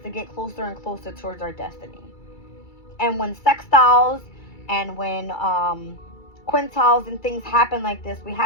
to get closer and closer towards our destiny. And when sextiles and when quintiles and things happen like this, we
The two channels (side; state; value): right; late; 2.3 ms